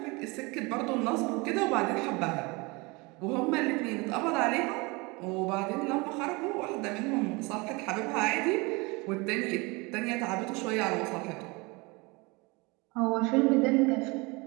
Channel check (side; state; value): left; quieter; 26.2 dB